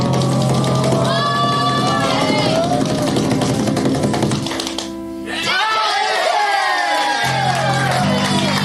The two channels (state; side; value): identical; both; correlation 1.00